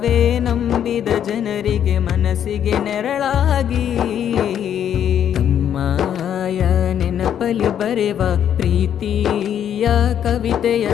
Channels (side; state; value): right; quieter; 9.5 dB